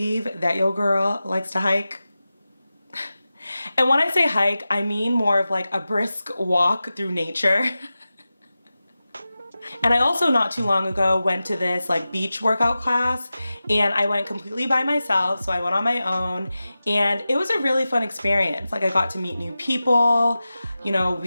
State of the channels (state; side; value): inverted; both; correlation -0.94